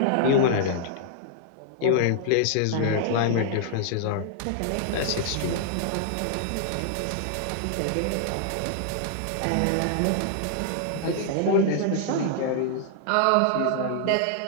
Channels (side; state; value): both; different; correlation -0.01